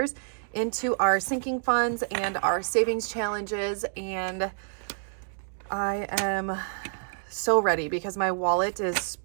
into our sinking funds and our savings challenges. And I am so ready because my wallet is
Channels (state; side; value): silent; left; digital silence